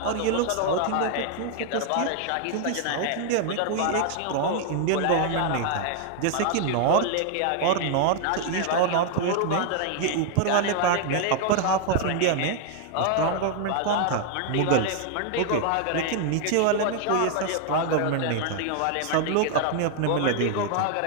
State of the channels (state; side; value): different; both; correlation 0.00